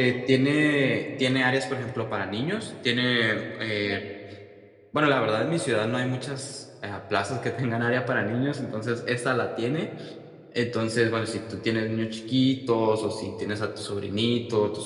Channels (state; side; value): identical; both; correlation 1.00